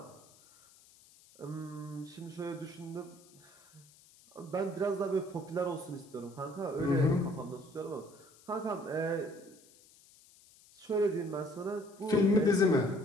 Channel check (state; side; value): noise; left; hiss, 26 dB below the sound